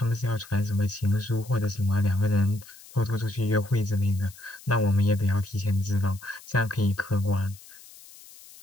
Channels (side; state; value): left; noise; hiss, 20 dB below the sound